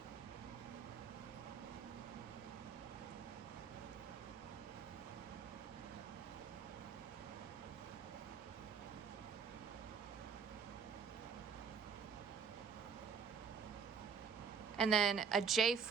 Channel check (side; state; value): left; quieter; 6.2 dB